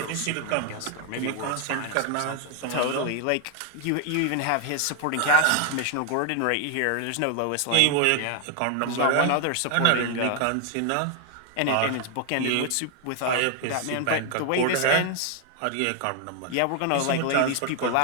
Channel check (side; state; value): both; different; correlation 0.00